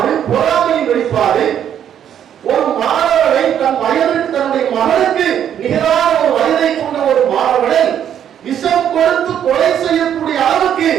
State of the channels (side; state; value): left; quieter; 9.6 dB